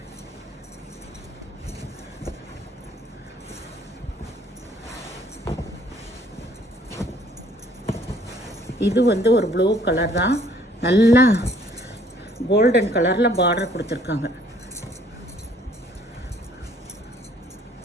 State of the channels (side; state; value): both; normal; correlation 0.61